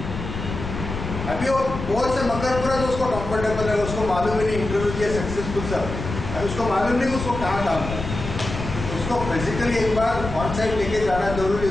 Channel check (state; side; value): noise; left; rumble, 7 dB below the sound